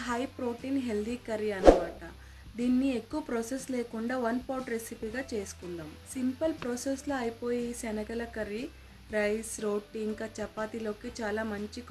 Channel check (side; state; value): both; identical; correlation 1.00